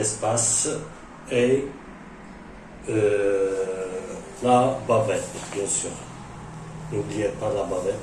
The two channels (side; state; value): both; identical; correlation 1.00